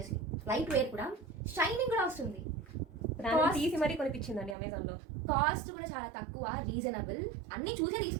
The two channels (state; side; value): drops out; left; at 4.5 s